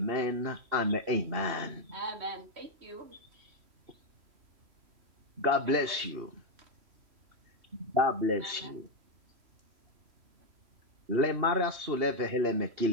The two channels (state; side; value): late; left; 2.8 ms